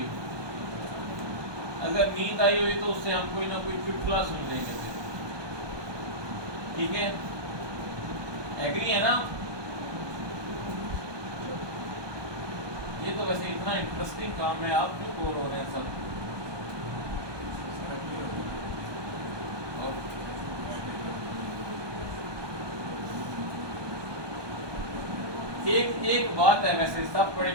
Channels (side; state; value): left; late; 1.2 ms